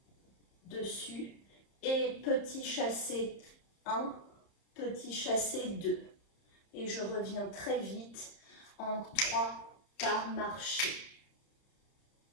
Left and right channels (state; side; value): late; right; 30 ms